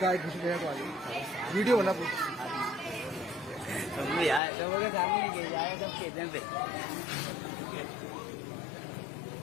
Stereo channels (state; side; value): drops out; right; at 4.4 s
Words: गाय घुस गया तो आगे वीडियो बना तू। यार लोगों के सामने के जाए सब खेतों पे।